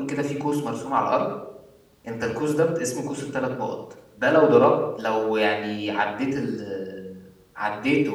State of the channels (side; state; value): both; identical; correlation 1.00